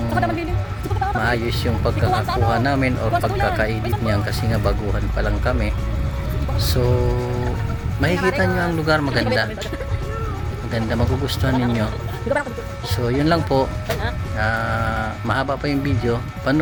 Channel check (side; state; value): both; identical; correlation 1.00